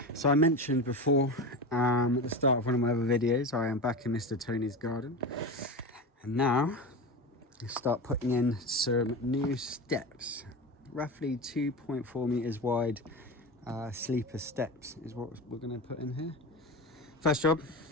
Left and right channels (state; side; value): normal; both; correlation 0.25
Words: So I mentioned before at the start of one of my other videos, I am back in Mr. Tony's garden, and now I start putting in some new steps. Roughly 2.4 meters wide sleeper steps is what we're going to put in here. First job,